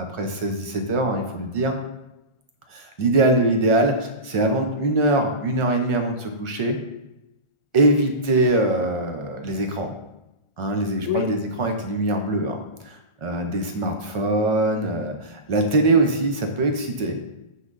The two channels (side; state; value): right; late; 1.4 ms